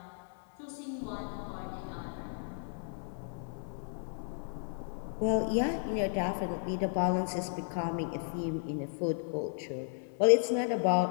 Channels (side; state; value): right; silent; 55 dB below the other